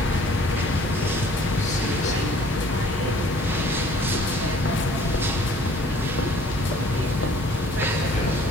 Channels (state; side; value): normal; both; correlation 0.54